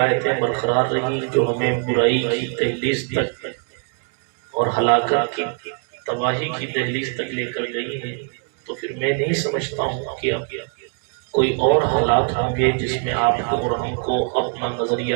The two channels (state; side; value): quieter; left; 39.6 dB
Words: برقرار رہی جو ہمیں برائی کی دہلیز تک اور ہلاکت کی تباہی کی دہلیز تک لے کر گئی ہیں، تو پھر میں نہیں سمجھتا ہوں کہ اب کوئی اور حالات ہوں گے جس میں آپ کو اور ہم کو اپنا